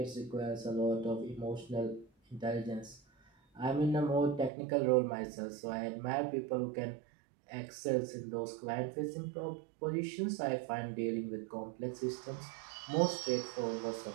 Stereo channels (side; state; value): left; drops out; at 4.5 s